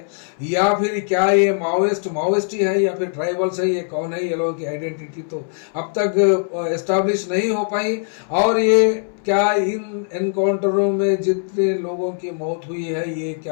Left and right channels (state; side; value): silent; right; 63 dB below the other